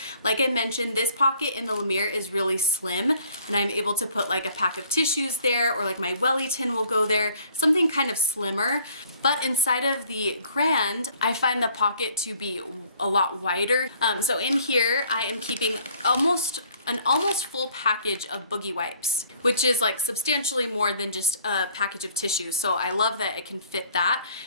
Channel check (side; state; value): both; inverted; correlation -0.57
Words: Like I mentioned, this pocket in the La Mere is really slim, and I'm able to put like a pack of tissues there, or like my welly tin will go there, something kind of slimmer. But inside of the grand, I find the pocket to be a lot wider. So in here, I am keeping almost an almost full package of boogie wipes, which is like substantially more than just a package of tissues. So I love that it can fit that.